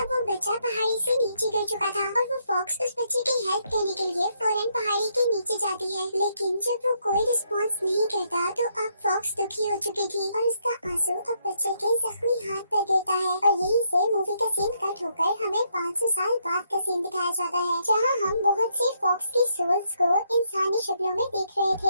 अब वो बच्चा पहाड़ी से नीचे गिर चुका था और वो फॉक्स उस बच्चे की हेल्प करने के लिए फौरन पहाड़ी के नीचे जाती है। लेकिन जब वो कोई रिस्पॉन्स नहीं करता तो अब फॉक्स दुखी हो चुकी थी और उसका आंसू अब बच्चे के जख्मी हाथ पर गिरता है और यहीं से मूवी का सीन कट होकर हमें 500 साल बाद का सीन दिखाया जाता है जहाँ हम बहुत से फॉक्स की सोल्स को इंसानी शक्लों में देख रहे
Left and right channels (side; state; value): both; inverted; correlation -0.75